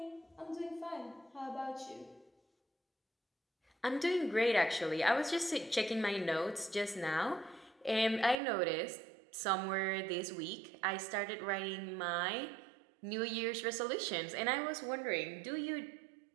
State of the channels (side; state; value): left; drops out; at 8.3 s